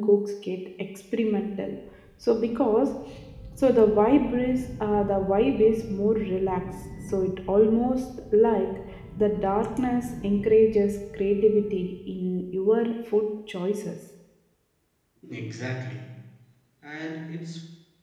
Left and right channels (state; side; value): identical; both; correlation 1.00